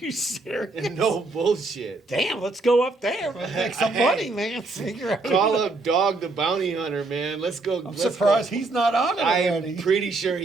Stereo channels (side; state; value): left; quieter; 3.3 dB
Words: serious? No bullshit. Damn, let's go up there. Let's make some money, man. Figure out. Call up Dog the Bounty Hunter, man. Let's go. I'm surprised he's not on it already. I'm pretty sure